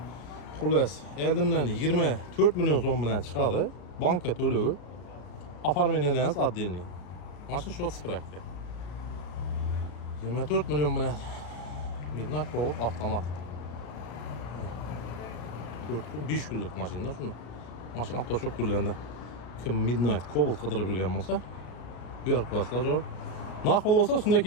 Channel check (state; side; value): late; right; 33 ms